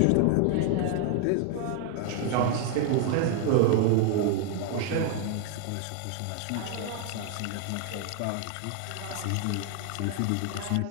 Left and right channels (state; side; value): different; both; correlation 0.00